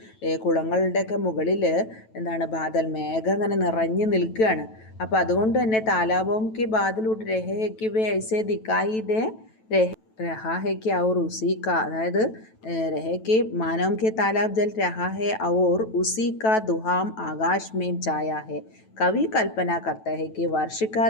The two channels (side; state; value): right; late; 9.1 ms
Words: കുളങ്ങളുടെയൊക്കെ മുകളിൽ എന്താണ് ബാദൽ, മേഘം അങ്ങനെ നിറഞ്ഞു നിൽക്കുകയാണ്. അപ്പോൾ അതുകൊണ്ട് തന്നെ താലാബോം കെ ബാദൽ ഉഡ് രഹയ്ക്ക് വേ ഐസേ ദിക്കായി ദേ रहा है कि और उसी का, अदायद रहे के मानव के तालाब जल रहा है और उसी का दुहाम आकाश में छाया है. कवि कल्पना करता है कि वर्ष का